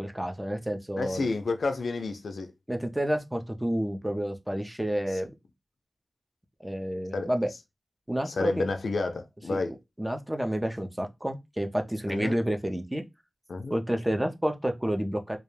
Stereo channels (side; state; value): both; normal; correlation 0.97